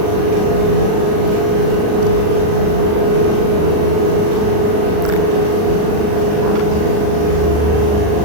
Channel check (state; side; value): late; left; 39 ms